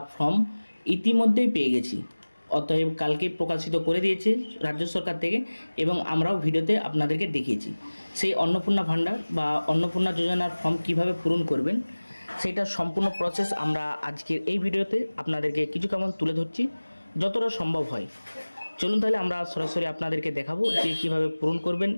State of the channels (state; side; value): inverted; both; correlation -1.00